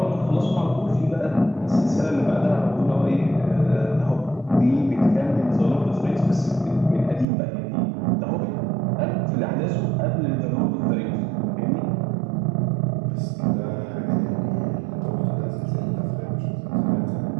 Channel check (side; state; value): left; drops out; at 7.2 s